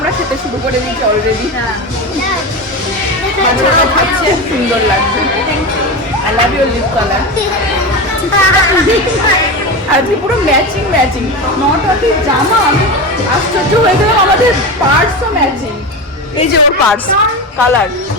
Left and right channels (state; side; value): normal; both; correlation 0.22